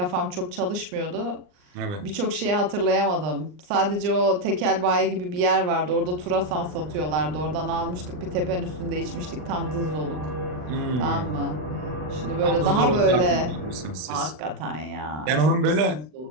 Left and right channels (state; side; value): late; left; 39 ms